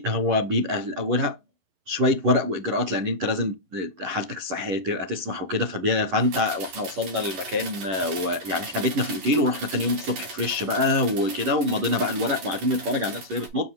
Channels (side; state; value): left; late; 11 ms